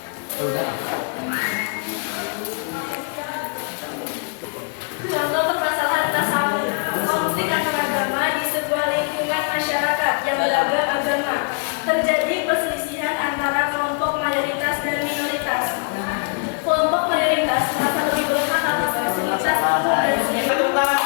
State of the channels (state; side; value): quieter; right; 38.4 dB